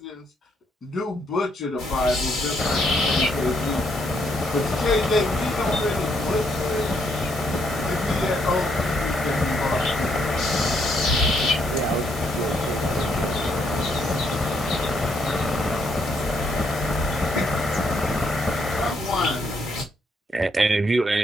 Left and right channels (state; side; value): normal; both; correlation 0.74